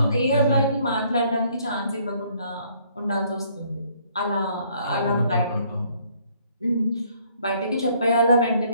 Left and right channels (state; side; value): inverted; both; correlation -0.64